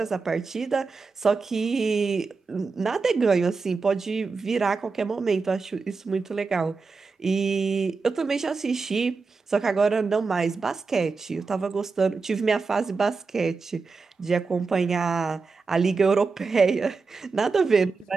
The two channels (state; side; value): quieter; left; 4.5 dB